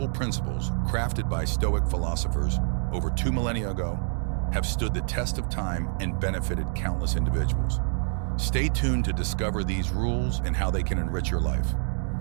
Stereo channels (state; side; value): silent; left; 59 dB below the other